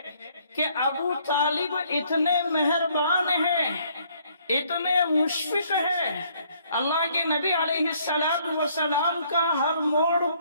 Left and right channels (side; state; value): both; inverted; correlation -0.65